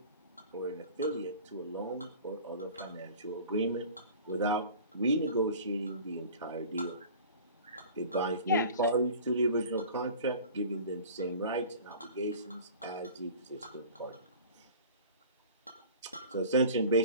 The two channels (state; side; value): inverted; both; correlation -0.42